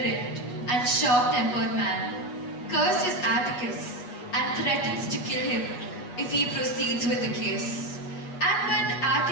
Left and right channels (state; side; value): late; right; 8.1 ms